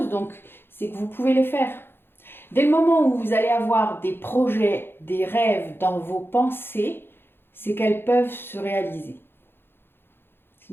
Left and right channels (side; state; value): right; late; 0.10 ms